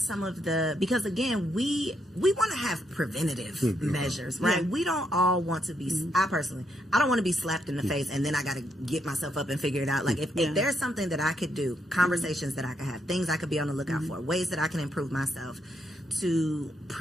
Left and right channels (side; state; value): both; normal; correlation 0.77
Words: of the, because again, we want to have preventative measures, right? Yeah. We don't all want to be, I don't want to be slapped in the face and then I got to get myself up and figure it out. Like if there's something that I could do, conversations that I could have, things I could be on the lookout for, ways that I can improve myself to